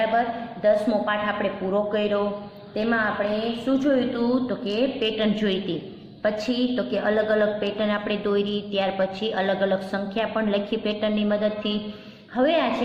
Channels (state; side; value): identical; both; correlation 1.00